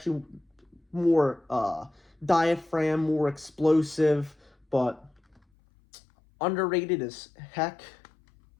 more diaphragm, more explosive, but underrated as heck.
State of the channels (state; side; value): drops out; right; at 5.4 s